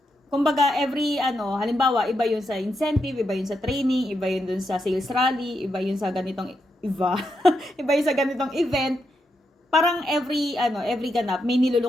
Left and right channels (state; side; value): normal; both; correlation 0.83